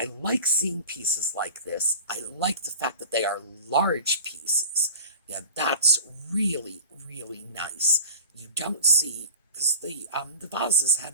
like seeing pieces like this. I like the fact that they are large pieces. Yeah, that's really, really nice. You don't see, because the vases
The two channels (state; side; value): inverted; both; correlation -0.37